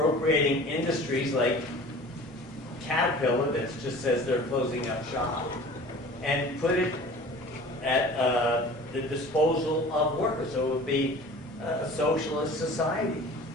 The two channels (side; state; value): both; normal; correlation 0.43